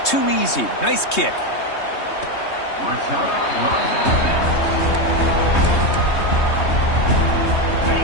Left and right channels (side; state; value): right; late; 3.2 ms